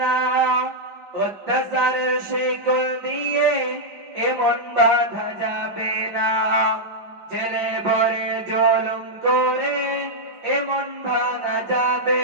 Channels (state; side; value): late; left; 5.1 ms